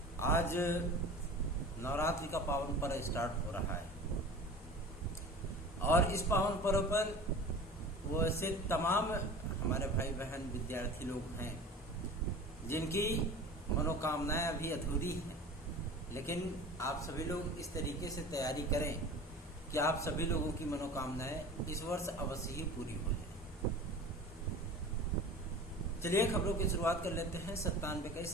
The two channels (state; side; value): normal; both; correlation 0.38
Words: आज नवरात्रि का पावन पर्व स्टार्ट हो रहा है और इस पावन पर्व पर वो ऐसे तमाम हमारे भाई बहन विद्यार्थी लोग हैं जिनकी मनोकामनाएं अभी अधूरी हैं, लेकिन आप सभी लोग इस तरीके से तैयारी करें कि आप सभी लोगों की मनोकामनाएं इस वर्ष अवश्य ही पूरी हो जाए। चलिए खबरों की शुरुआत कर लेते हैं।